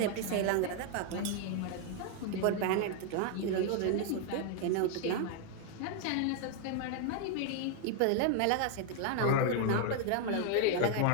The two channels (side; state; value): both; different; correlation 0.00